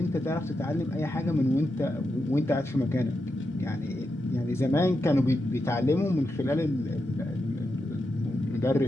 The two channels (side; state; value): both; normal; correlation 0.86